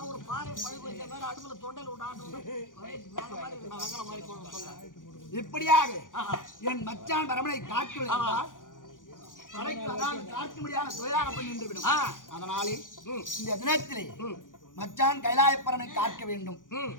ஒரு பாறை பழுகு வச்ச மாதிரி அடுப்புல தொண்டையில விட்டு இப்படியாக என் மச்சான் பரமனை காட்டு காட்ட முடியாத தொழிலாக பண்ணி நின்றுவிடும். அதனாலே இந்த தினத்திலே மச்சான் கைலாயப்பரனை காக்க வேண்டும்.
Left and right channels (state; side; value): late; right; 0.89 ms